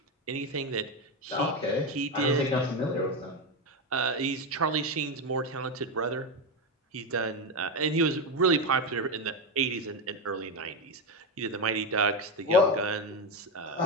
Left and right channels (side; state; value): both; normal; correlation 0.12